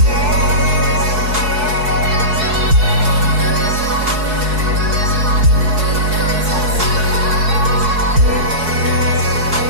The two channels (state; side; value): late; left; 4.7 ms